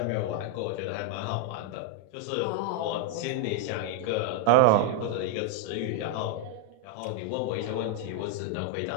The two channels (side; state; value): both; different; correlation 0.00